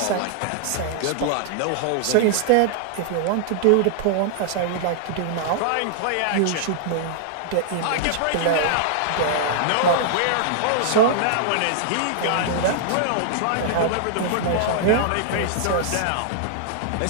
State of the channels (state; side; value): different; both; correlation -0.01